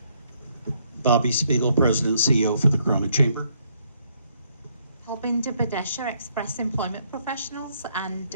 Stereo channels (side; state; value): both; inverted; correlation -0.71